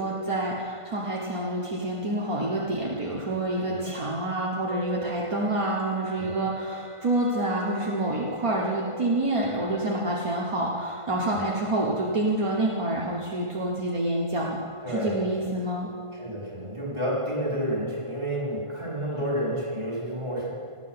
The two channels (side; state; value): left; late; 1.5 ms